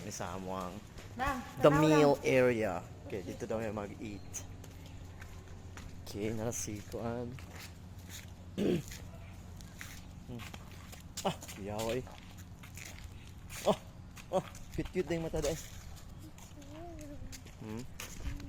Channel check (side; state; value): both; identical; correlation 1.00